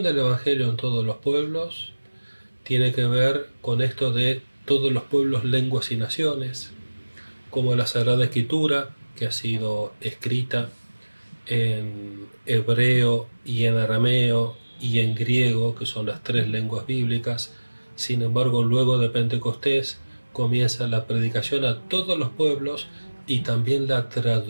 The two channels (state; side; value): inverted; both; correlation -1.00